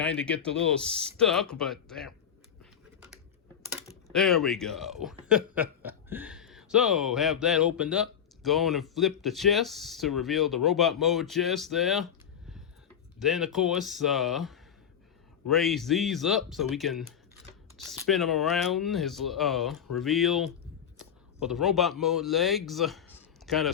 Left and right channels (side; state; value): right; quieter; 8.6 dB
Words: get a little stuck, but there we go. So have that opened up. Go on and flip the chest to reveal the robot mode chest there. Then, of course, raise these up so we can spin them around. His reveal for the robot mode legs. Kind